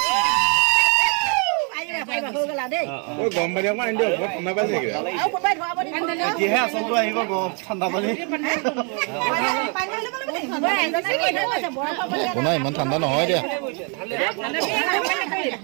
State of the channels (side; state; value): left; quieter; 36.9 dB